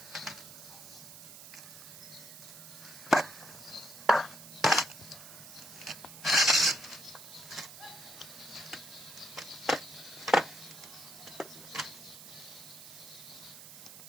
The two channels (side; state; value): right; noise; hiss, 14 dB below the sound